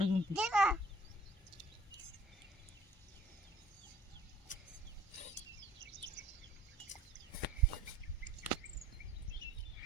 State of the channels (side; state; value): both; normal; correlation 0.53